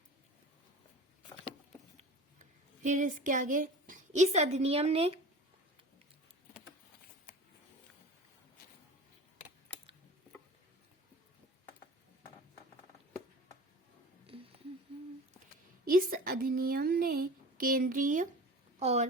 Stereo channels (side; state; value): both; normal; correlation 0.38